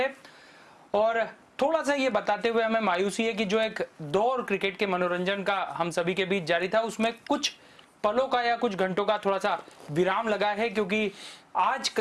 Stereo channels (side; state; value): both; identical; correlation 1.00